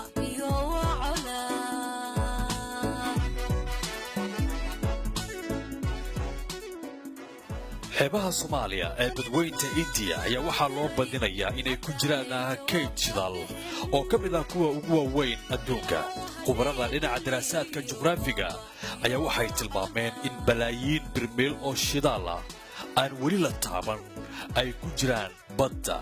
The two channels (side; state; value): both; identical; correlation 1.00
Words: يو علا xeebaha Soomaaliya ee badweynta India ayaa waxa loo badinayaa inay ku jiraan kayd shidaal oo ka mid ah kuwa ugu waaweyn adduunka. Khubarada dhinaca daraasaadka juqraafiga ayaa waxay tilmaameen in balaayiin barmiil oo shidaal ah aan weli la taaban ay ku jiraan badda